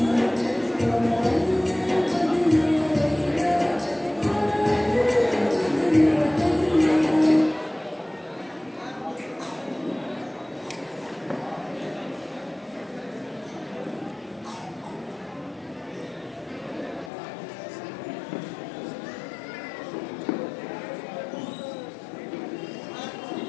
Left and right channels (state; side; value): drops out; right; at 17.1 s